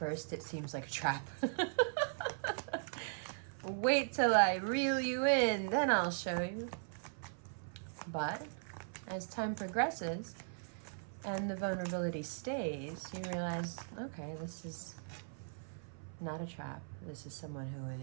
it seems like a trap. Wait till I reel you in, then I'll show you. But as time progresses and the vulnerability stays, you realize, okay, this is not a trap. This is someone who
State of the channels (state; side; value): silent; left; 52 dB below the other